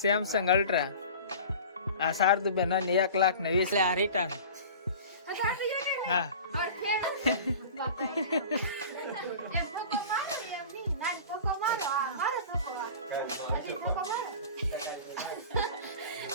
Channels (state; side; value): inverted; both; correlation -0.38